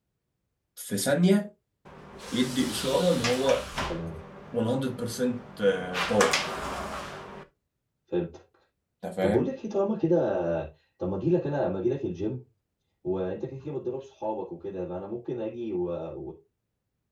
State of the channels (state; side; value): identical; both; correlation 1.00